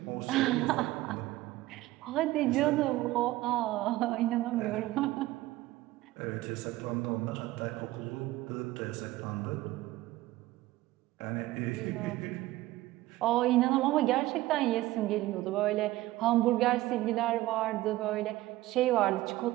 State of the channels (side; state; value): left; quieter; 17.2 dB